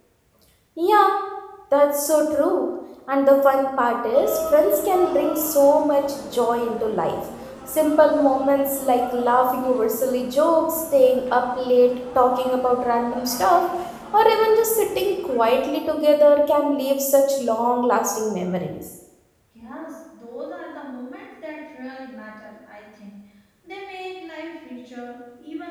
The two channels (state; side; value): identical; both; correlation 1.00